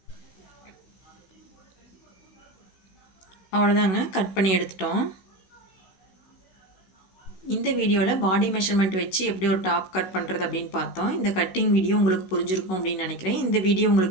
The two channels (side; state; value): right; late; 15 ms